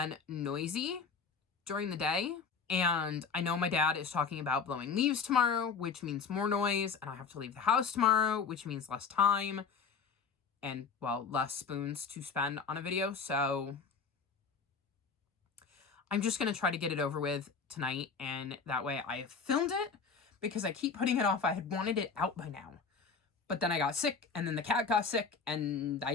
noisy during the day. And I know my dad is talking about blowing leaves tomorrow, which means more noise, and I have to leave the house tomorrow, which means less time and, well, less spoons to spend on a video. So I'm just going to try to get it over with tonight, and that way I have filmed it, because I keep putting it off. I had wanted it out by now, but then I got sick, and then the cat got sick, and I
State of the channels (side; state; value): right; quieter; 5.5 dB